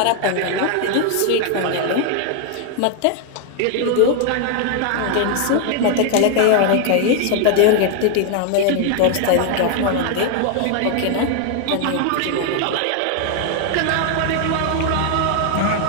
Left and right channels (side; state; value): both; different; correlation 0.00